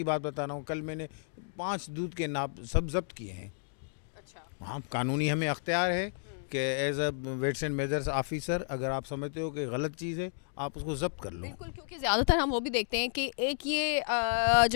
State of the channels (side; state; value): right; silent; digital silence